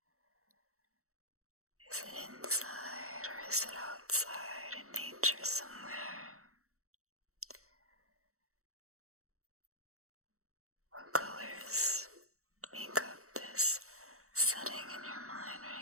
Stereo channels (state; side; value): late; left; 0.64 ms